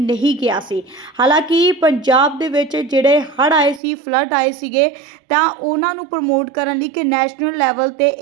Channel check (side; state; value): left; drops out; at 3.8 s